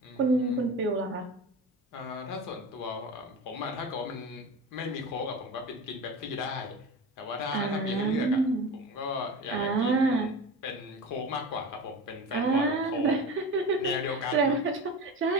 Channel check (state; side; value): normal; both; correlation 0.30